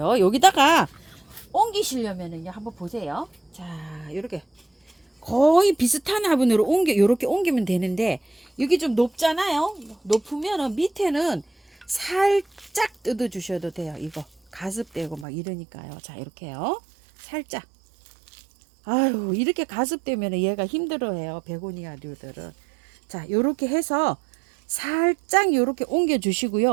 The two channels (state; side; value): drops out; left; at 15.2 s